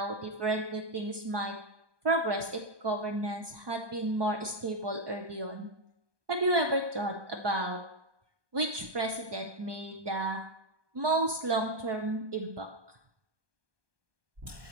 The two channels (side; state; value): left; late; 1.2 ms